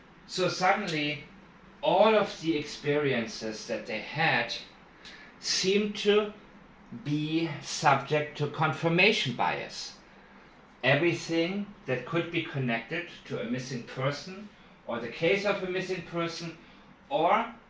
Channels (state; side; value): identical; both; correlation 1.00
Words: So suddenly, all of the experiences that they had seem to be subject to confirmation bias. Everything that could be connected to a missing person, or the case of a missing person, or